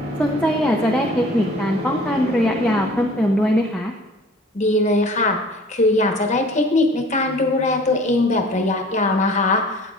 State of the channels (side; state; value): both; normal; correlation 0.49